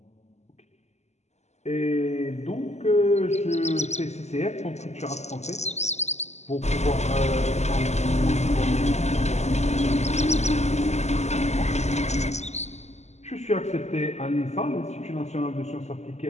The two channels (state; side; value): late; right; 0.33 ms